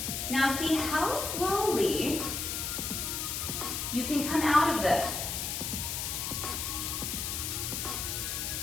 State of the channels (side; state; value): left; noise; hiss, 2 dB below the sound